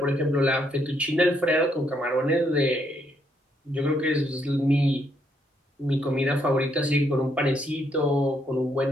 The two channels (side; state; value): both; normal; correlation 0.73